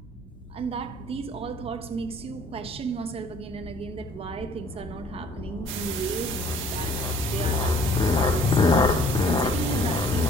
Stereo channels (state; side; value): normal; both; correlation 0.56